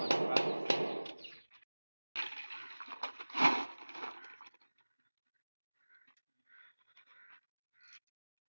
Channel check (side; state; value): both; inverted; correlation -1.00